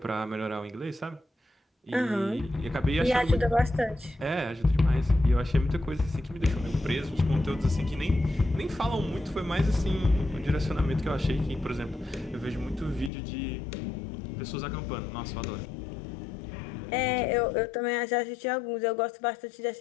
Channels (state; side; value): drops out; right; at 13.1 s